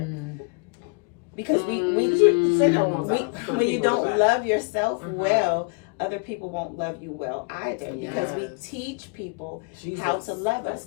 Because when you don't love yourself well, other people won't love you well either, because we teach people how to love us.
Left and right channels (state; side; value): quieter; right; 35.2 dB